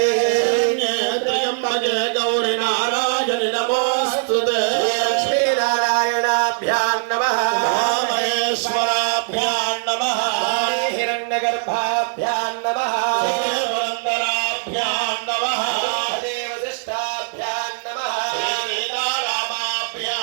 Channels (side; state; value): left; silent; digital silence